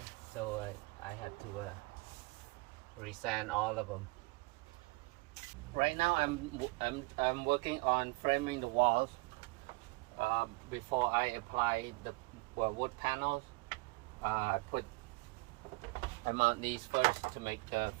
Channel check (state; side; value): quieter; left; 25.9 dB